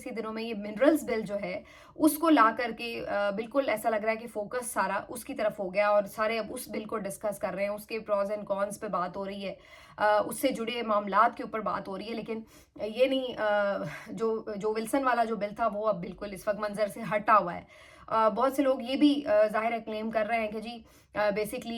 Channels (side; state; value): both; identical; correlation 1.00